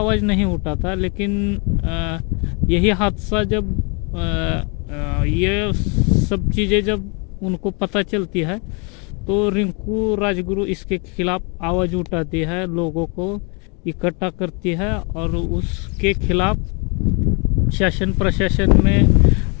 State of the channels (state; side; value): quieter; right; 33.6 dB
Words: नहीं उठाता। लेकिन यही हादसा जब ये सब चीज़ें जब उनको पता चलती है तो रिंकू राजगुरु इसके खिलाफ आवाज़ उठाती है, लोगों को इकट्ठा करती है और उसके खिलाफ शासन प्रशासन में